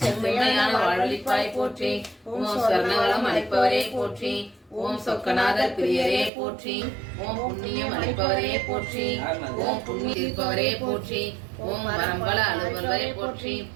செம்மையான வாழ்வளிப்பாய் போற்றி. ஓம் ஸ்வர்ணவளம் அளிப்பவரே போற்றி. ஓம் சொக்கநாதர் பிரியரே போற்றி. ஓம் புண்ணியம் அளிப்பவரே போற்றி. ஓம் புண்ணியம் தீர்ப்பவரே போற்றி. ஓம் வரம்பல அலுவலரே போற்றி.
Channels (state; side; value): drops out; left; at 6.3 s